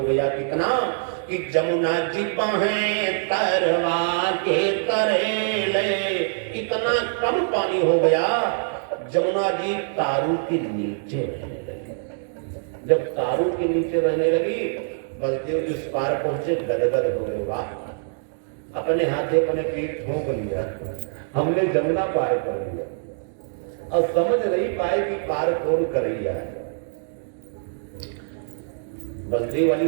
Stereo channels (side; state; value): left; silent; digital silence